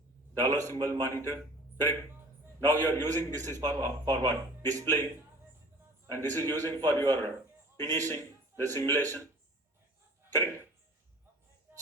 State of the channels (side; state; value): both; normal; correlation 0.46